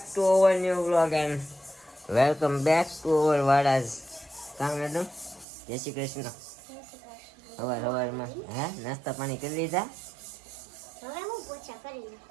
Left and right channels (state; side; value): drops out; left; at 5.5 s